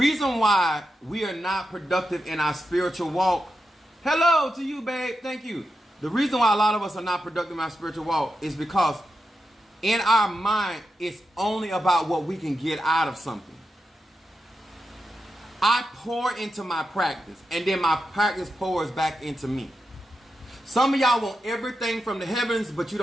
why we are not productive in our spiritual walk. Hello to you, babe. Thank you. The reason why a lot of us are not productive in our spiritual walk is because in our mind, it's only about what we can get out of something. I pour into my practice, and then my practice pours back into me. Some of y'all want everything from the heavens, but you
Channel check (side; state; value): both; normal; correlation 0.88